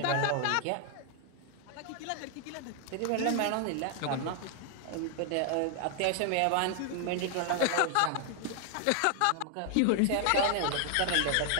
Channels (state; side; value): different; both; correlation 0.00